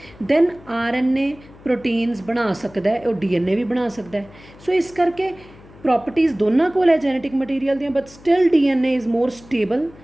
ਦੈਨ RNA ਪ੍ਰੋਟੀਨਸ ਬਣਾ ਸਕਦਾ, ਉਹ DNA ਵੀ ਬਣਾ ਸਕਦਾ। ਸੋ ਇਸ ਕਰਕੇ ਪ੍ਰੋਪਰਟੀਜ਼ ਦੋਨਾਂ ਕੋਲ ਹੈ ਜੈਨੇਟਿਕ ਮਟੀਰੀਅਲ ਦੀਆਂ, but still DNA is more stable.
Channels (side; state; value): left; noise; hum, 23 dB below the sound